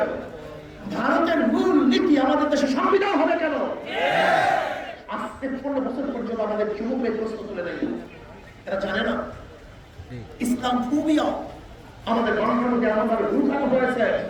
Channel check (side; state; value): both; identical; correlation 1.00